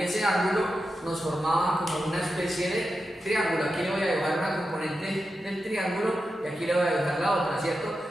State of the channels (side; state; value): both; normal; correlation 0.90